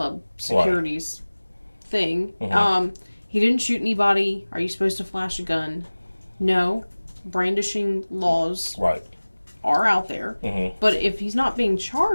security's thing. Mm-hmm. He didn't shoot anybody. Are you supposed to flash a gun? No. Brandishing laws are out there. Mm-hmm. But if he's not being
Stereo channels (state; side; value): inverted; both; correlation -1.00